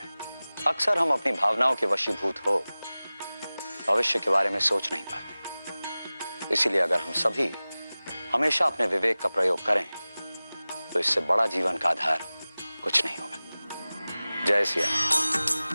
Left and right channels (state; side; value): inverted; both; correlation -0.98